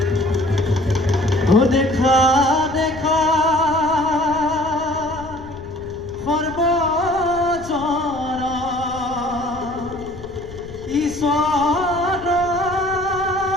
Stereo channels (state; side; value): noise; left; rumble, 16 dB below the sound